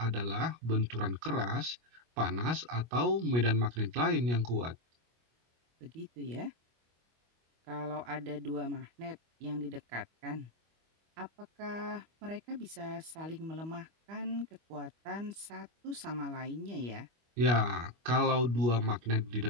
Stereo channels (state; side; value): late; left; 25 ms